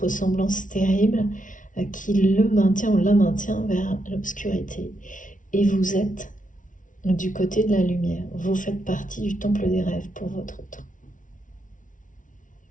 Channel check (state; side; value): late; right; 0.38 ms